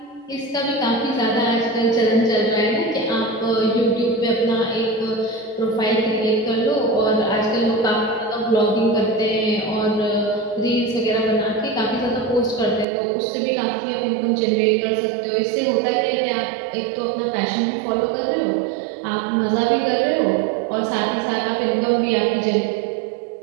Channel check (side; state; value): left; drops out; at 12.9 s